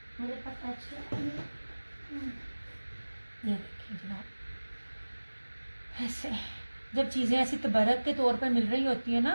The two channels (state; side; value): inverted; both; correlation -1.00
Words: मेरे पास एक्स्ट्रा है। ये देखिए जनाब, ऐसे जब चीज़ें ऐसी तबरक के तौर पर मिल रही होती है